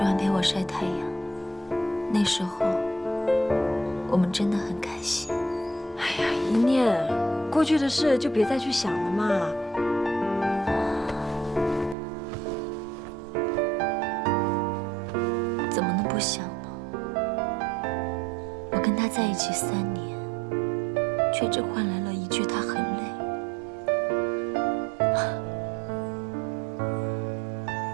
陪我晒太阳。那时候，我们真的很开心。哎呀，一念，过去的事就别再去想了嘛。怎么能不想呢？我跟他在一起3年，却只换来了一句他很累。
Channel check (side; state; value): left; drops out; at 12.0 s